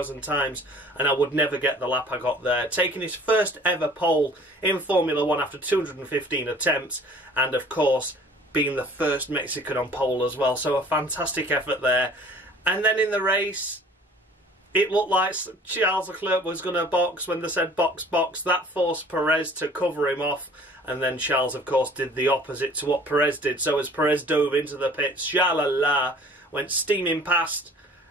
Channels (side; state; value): both; normal; correlation 0.50